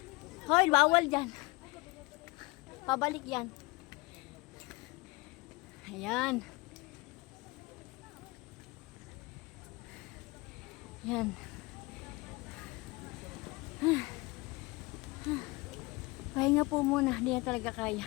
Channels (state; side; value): quieter; right; 24.1 dB